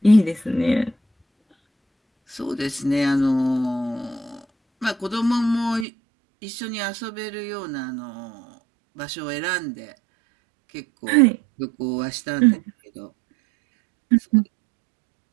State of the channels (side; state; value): left; drops out; at 5.9 s